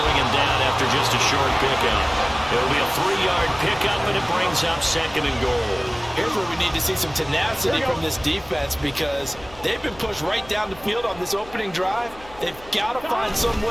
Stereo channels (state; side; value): noise; left; hum, 21 dB below the sound